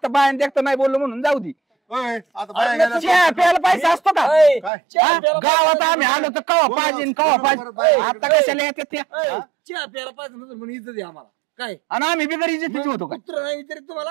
बायान देखता नाही बोललो म्हणून जाऊ दे ओय, आता बाया गेल्या. चहा प्यायला पैसा असतो का ऐ, काय? हा? गावात आम्ही आलो तर कवा पाहिजे कवा पाहिजे आता कशाला येतात त्या ऐ, चहा प्यायला पाहिजे नसेल म्हणून इज्जत आहे आम्हाला काय आणि आम्ही बिगर इज्जतीचे होतो का कुत्र नाही विचारित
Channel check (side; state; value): left; drops out; at 4.7 s